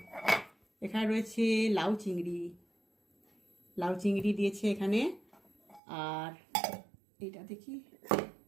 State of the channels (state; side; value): drops out; left; at 5.8 s